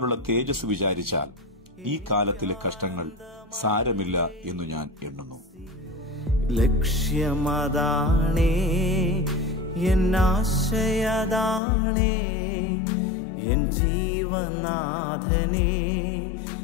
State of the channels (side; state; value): right; drops out; at 11.6 s